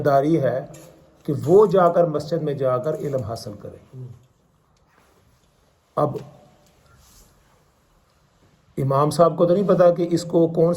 ہے کہ وہ جا کر مسجد میں جا کر علم حاصل کرے۔ اب امام صاحب کو تو نہیں پتا کہ اس کو کون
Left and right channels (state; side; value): identical; both; correlation 1.00